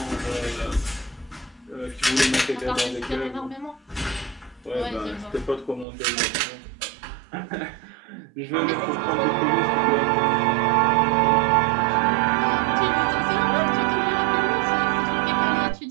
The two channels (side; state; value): left; drops out; at 5.9 s